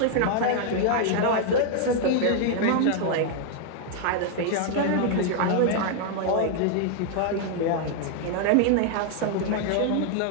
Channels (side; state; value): both; different; correlation 0.00